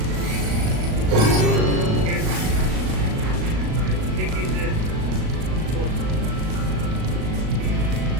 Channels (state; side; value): late; left; 38 ms